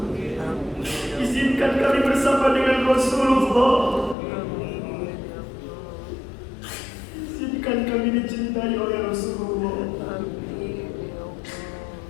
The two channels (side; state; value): right; drops out; at 4.2 s